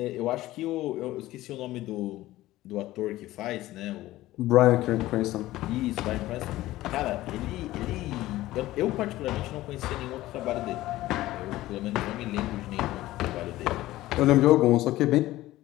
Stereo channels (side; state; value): right; quieter; 16.4 dB